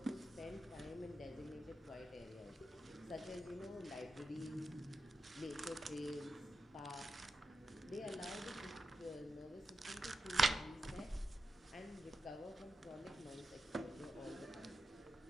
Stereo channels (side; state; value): both; normal; correlation 0.89